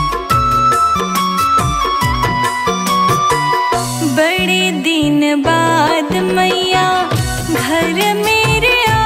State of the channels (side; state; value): both; identical; correlation 1.00